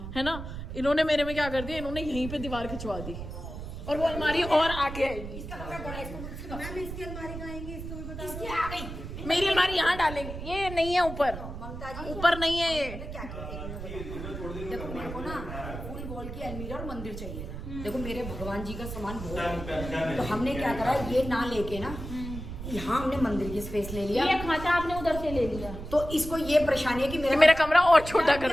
है ना। इन्होंने मेरे में क्या कर दिया, इन्होंने यहीं पे दीवार खिंचवा दी और वो अलमारी और आगे आएगी। मैम इसकी अलमारी कहाँ आएंगी, इसको भी बता दो। इसकी आ गई। मेरी अलमारी यहाँ डालेंगे, ये नहीं है ऊपर, ममता जी ऊपर नहीं है ये। क्या किया, एक मिनट बताओ। देखो मेरे को ना फुल वॉल की अलमीरा और मंदिर चाहिए था। देखो मेरे भगवान जी का सामान बहुत है, तो हमने क्या करा, ये ना लेके ना यहाँ हमने मंदिर की स्पेस ले लिया। ये खांचा आपने उधर से ले लिया। तो इसको ये परेशानी है कि मेरा कमरा और छोटा कर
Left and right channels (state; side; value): noise; right; rumble, 9 dB below the sound